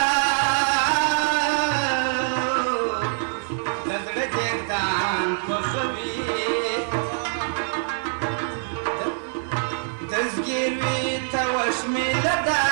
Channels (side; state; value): left; silent; 62 dB below the other